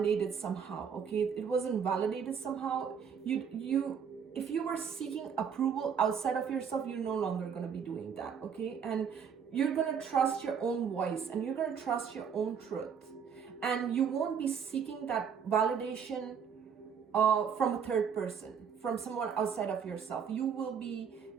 somehow, okay? It wasn't validated somehow. If you were seeking approval outside of yourself, you're no longer going to be doing that, okay? And you're going to trust your own voice and you're going to trust your own truth. And you won't be seeking that validation from a third person, from someone outside of yourself. You will be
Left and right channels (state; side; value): quieter; left; 7.1 dB